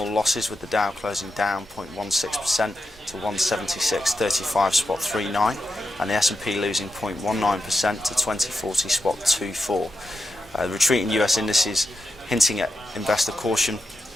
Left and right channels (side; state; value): both; normal; correlation 0.87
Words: losses, with the Dow closing down 0.16% to 176.35.39, and the S&P losing 0.19% to 2040.24. The retreating US indices hinting at investor caution